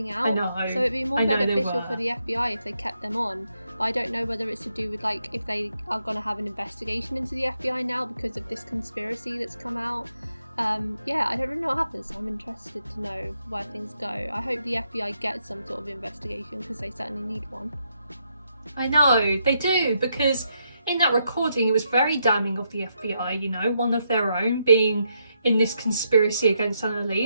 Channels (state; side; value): inverted; both; correlation -0.79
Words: out. I know. So it'd be more beneficial for the FBI if they kept them on. But I don't know whether it's to do with if they are going to have an investigation into the FBI now because of this conspiracy that's come out. Yeah, I don't really know what happens, so I'm interested to know where things go. I hope the FBI gets some sort of investigation because they certainly need one. I know, they do, because in that recording it was very damning of the FBI, one of their own being in this conspiracy against